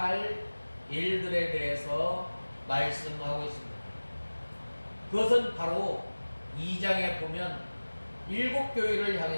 일들에 대해서 말씀하고 있습니다. 그것은 바로 2장에 보면 일곱 교회를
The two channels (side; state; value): both; inverted; correlation -1.00